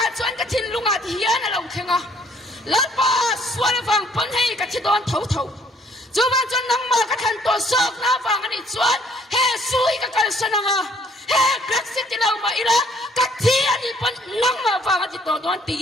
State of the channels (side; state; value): both; normal; correlation 0.62